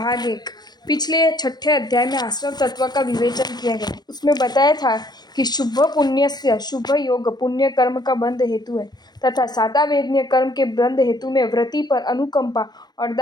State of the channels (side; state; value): right; late; 0.20 ms